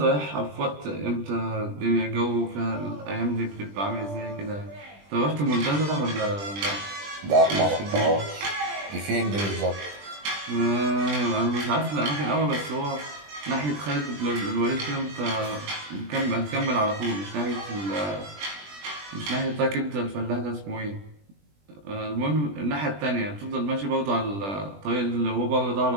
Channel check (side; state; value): left; late; 20 ms